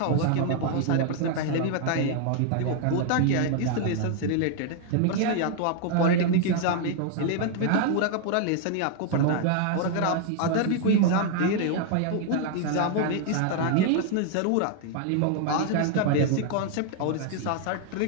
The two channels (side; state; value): both; different; correlation 0.00